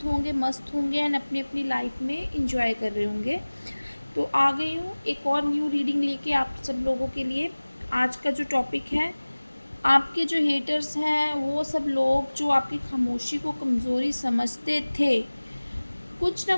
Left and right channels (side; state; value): both; inverted; correlation -1.00